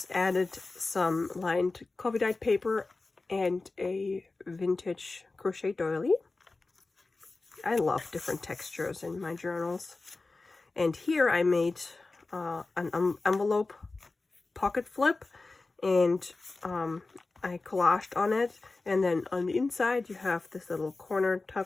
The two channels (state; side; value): quieter; right; 3.5 dB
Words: added some lined coffee dyed paper and a vintage crochet doily. I love different textures in my journals. And here I made an envelope pocket flip, and I collaged on it. And then on the inside you have this little corner